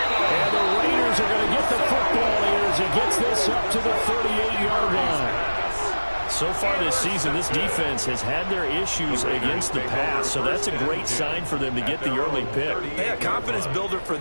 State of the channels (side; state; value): both; inverted; correlation -1.00